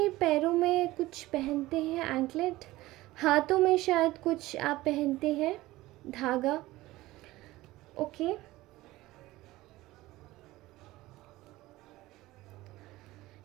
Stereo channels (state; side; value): quieter; left; 18.0 dB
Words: पैरों में कुछ पहनते हैं, एंकलेट, हाथों में शायद कुछ आप पहनते हैं, धागा। ओके,